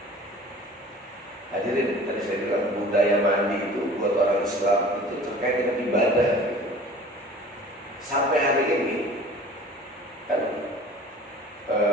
Hadirin, tadi saya bilang budaya mandi itu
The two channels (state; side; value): normal; both; correlation 0.44